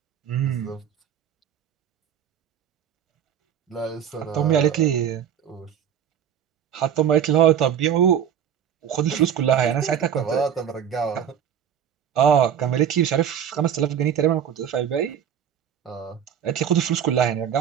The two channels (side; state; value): left; quieter; 8.9 dB